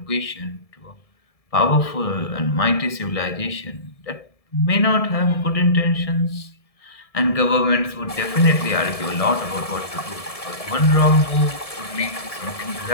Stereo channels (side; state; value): right; late; 1.7 ms